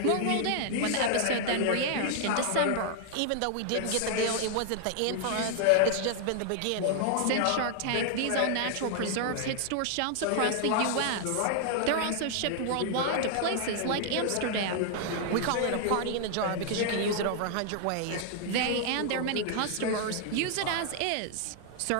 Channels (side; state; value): both; different; correlation 0.00